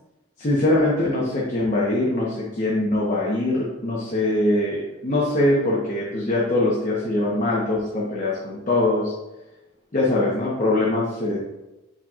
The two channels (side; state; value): both; normal; correlation 0.39